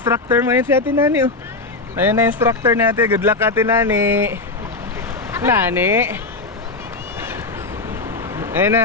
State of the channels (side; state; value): right; quieter; 3.4 dB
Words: mo. Ayun si Ate Nani, oh. Ayun na instructor natin. Good luck, Ate Nani. Nani. Ayun